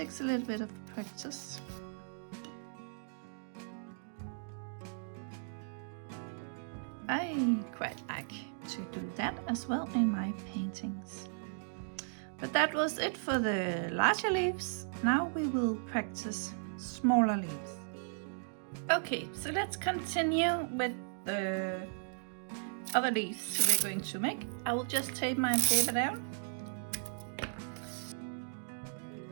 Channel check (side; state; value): left; silent; digital silence